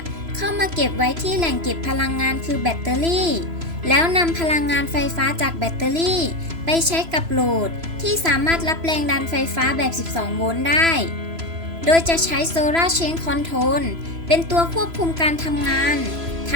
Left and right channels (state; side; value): late; left; 3.0 ms